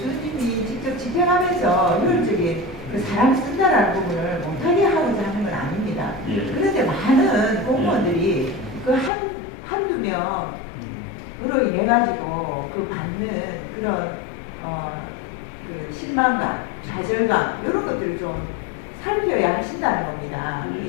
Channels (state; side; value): drops out; right; at 9.1 s